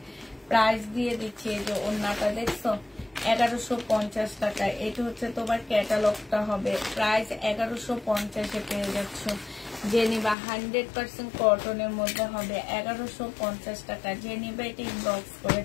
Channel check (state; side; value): drops out; right; at 10.4 s